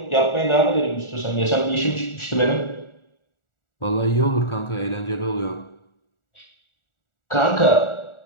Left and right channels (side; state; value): right; late; 1.4 ms